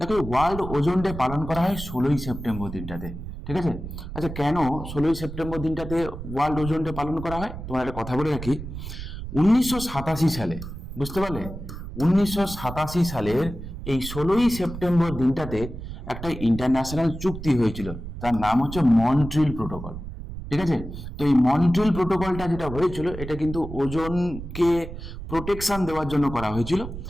ওয়ার্ল্ড ওজোন ডে পালন করা হয় 16ই সেপ্টেম্বর দিনটাতে। ঠিক আছে, আচ্ছা কেন 16ই সেপ্টেম্বর দিনটাতে ওয়ার্ল্ড ওজোন ডে পালন করা হয়? তোমার একটা কথা বলে রাখি, 1987 সালে, বুঝতে পারলে, 1987 সালের এই 16ই সেপ্টেম্বর দিনটাতে একটা ইন্টারন্যাশনাল চুক্তি হয়েছিল, তার নাম হচ্ছে মন্ট্রিল প্রোটোকল। ঠিক আছে, তো এই মন্ট্রিল প্রোটোকলটা যেটা হয়েছিল, এটা কিন্তু ওজোনকে প্রোটেকশন দেওয়ার জন্য করা হয়েছিল।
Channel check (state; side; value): noise; right; rumble, 9 dB below the sound